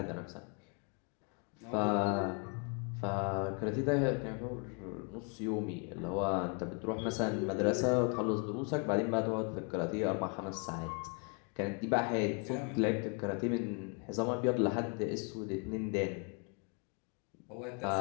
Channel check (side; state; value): right; quieter; 35.7 dB